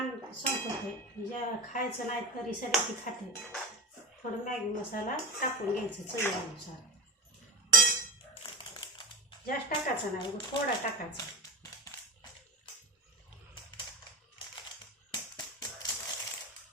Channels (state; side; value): normal; both; correlation 0.23